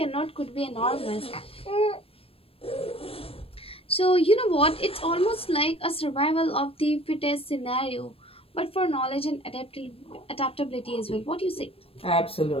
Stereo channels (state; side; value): late; right; 0.28 ms